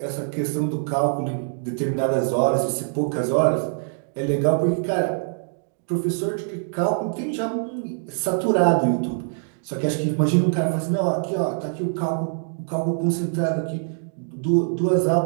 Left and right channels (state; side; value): silent; left; digital silence